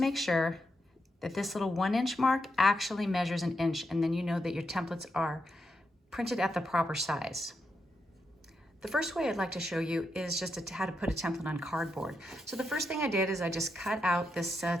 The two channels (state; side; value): normal; both; correlation 0.84